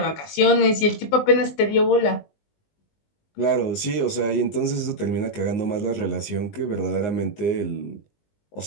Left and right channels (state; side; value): late; right; 19 ms